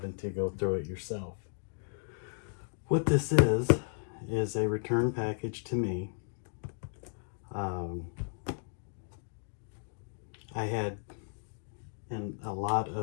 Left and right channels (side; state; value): right; silent; digital silence